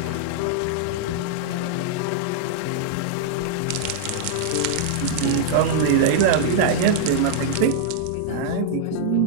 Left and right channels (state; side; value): different; both; correlation -0.01